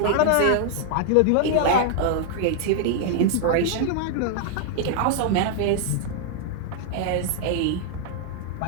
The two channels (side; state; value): both; different; correlation 0.00